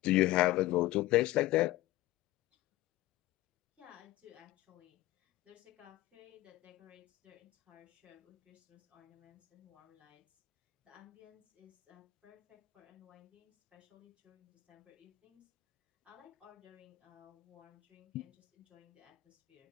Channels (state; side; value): quieter; right; 17.1 dB